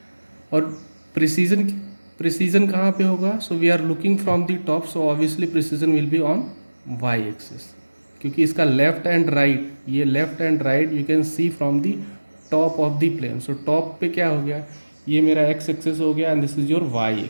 और precession कहाँ पे होगा. So we are looking from the top, so obviously precession will be on y axis. क्योंकि इसका left and right, ये left and right you can see from the top of the plane. So top पे क्या हो गया, ये मेरा x axis हो गया and this is your y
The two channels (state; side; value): inverted; both; correlation -1.00